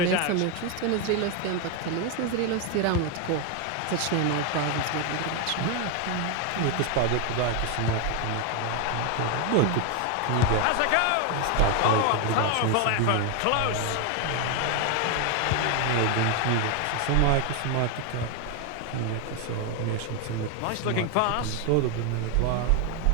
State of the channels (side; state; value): both; different; correlation 0.01